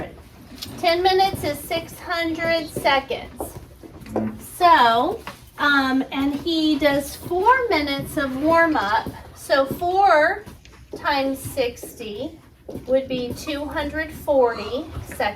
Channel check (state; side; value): identical; both; correlation 1.00